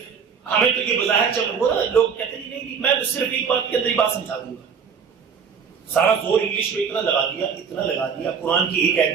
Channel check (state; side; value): quieter; left; 6.5 dB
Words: ہمیں تو یہ بظاہر چل رہا ہے، لوگ کہتے ہیں نہیں، میں صرف ایک بات کے اندر ہی بات سمجھا دوں گا. سارا زور انگلش میں اتنا لگا دیا، قرآن کی ایک آیت